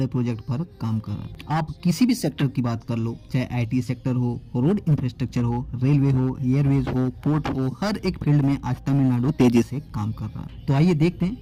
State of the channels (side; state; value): both; identical; correlation 1.00